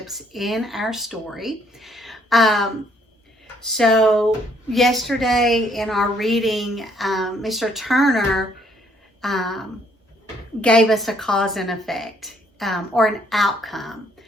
in our story. So yesterday in our reading, Mr. Turner gave us a cause and effect or an outcome.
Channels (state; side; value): normal; both; correlation 0.67